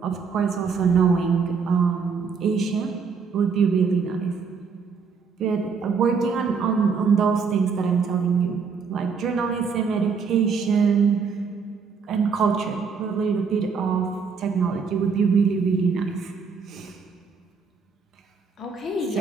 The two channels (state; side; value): quieter; left; 5.5 dB